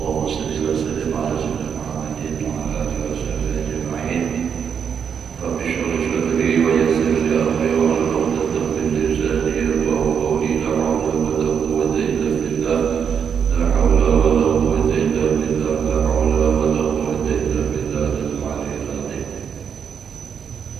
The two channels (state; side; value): quieter; left; 7.3 dB